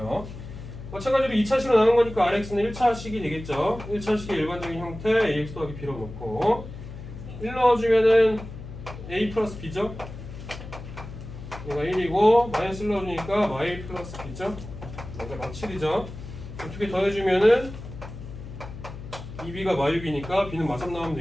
마찬가지로 2차식으로 나눈 거니까 RX는 1차식이 되겠죠. 1차식의 일반적인 형태 AX 더하기 B로 놓고 1 넣어주면은 A 플러스 B죠. 얘가 1이고 마이너스 1 넣어주니까 Y 플러스 B죠. 그러니까 마칠이죠. 두 개 더해주면은 2B가 마유비니까 B는 마3 나오면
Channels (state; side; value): noise; left; hum, 12 dB below the sound